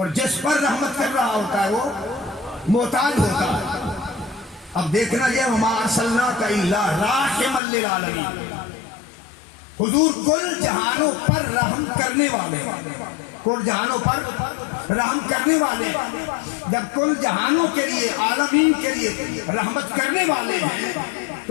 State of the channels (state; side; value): drops out; right; at 7.6 s